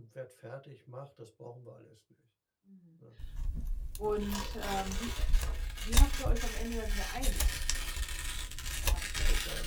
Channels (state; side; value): identical; both; correlation 1.00